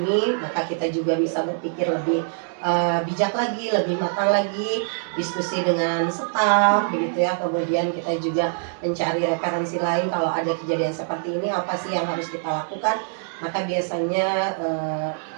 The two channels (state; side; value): silent; left; digital silence